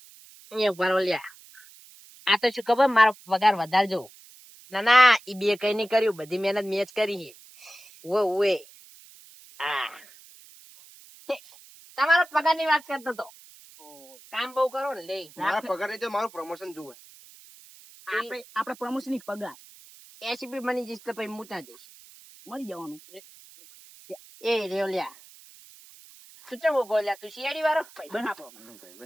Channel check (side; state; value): right; noise; hiss, 22 dB below the sound